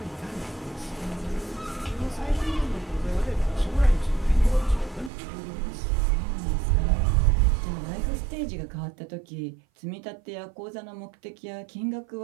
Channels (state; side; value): drops out; left; at 5.1 s